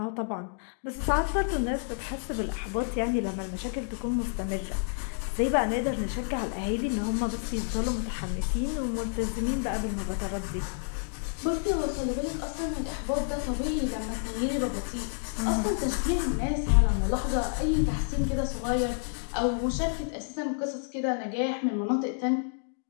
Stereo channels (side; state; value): right; silent; digital silence